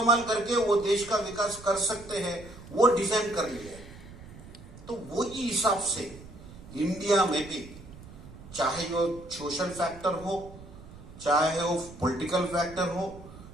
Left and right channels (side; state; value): right; noise; rumble, 17 dB below the sound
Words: करके वो देश का विकास कर सकते हैं वो डिजाइन कर लिए। तो वही हिसाब से इंडिया में भी, चाहे वो सोशल फैक्टर हो, चाहे वो पॉलिटिकल फैक्टर हो,